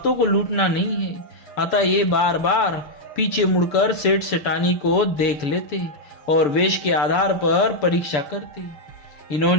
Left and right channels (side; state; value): right; late; 6.8 ms